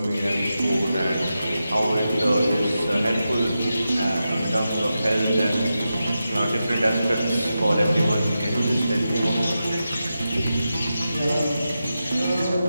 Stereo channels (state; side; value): inverted; both; correlation -0.90